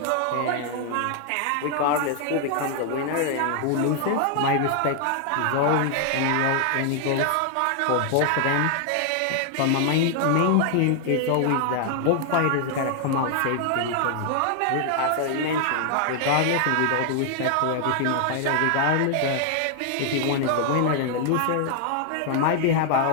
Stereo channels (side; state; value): both; different; correlation 0.00